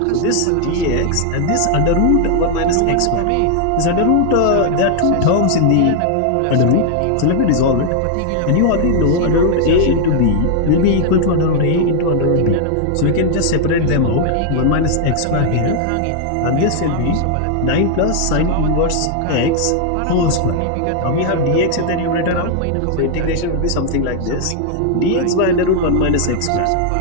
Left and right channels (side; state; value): both; different; correlation 0.00